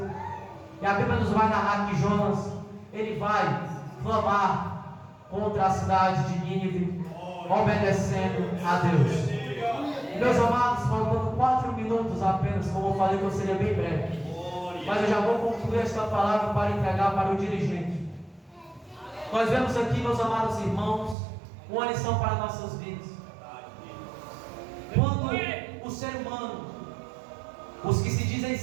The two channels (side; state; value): left; drops out; at 21.2 s